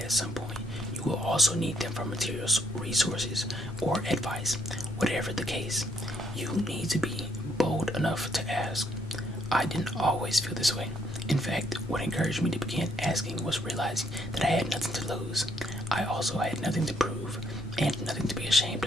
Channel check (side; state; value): both; normal; correlation 0.70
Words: at some point you will also need them for materials, resources, or advice. Whatever the case, you need to be bold enough to ask. I didn't always feel this way. In fact, what encouraged me to begin asking was realizing that I had nothing to lose. I also had nothing to prove and nothing to be ashamed